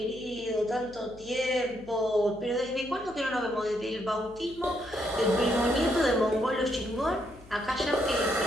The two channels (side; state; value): left; noise; hum, 21 dB below the sound